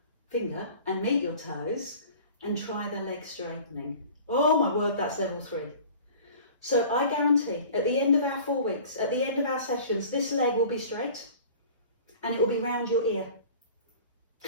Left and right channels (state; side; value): inverted; both; correlation -0.44